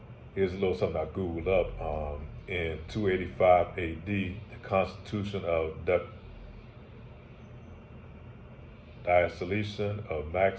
Here's a little something I Googled up. In 285 AD, the Constitution of Diocletian of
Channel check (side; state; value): both; identical; correlation 1.00